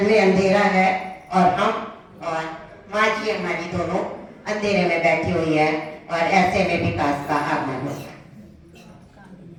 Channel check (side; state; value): both; identical; correlation 1.00